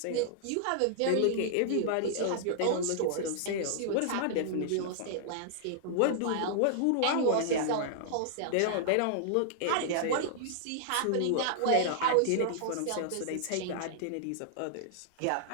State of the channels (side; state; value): both; different; correlation -0.01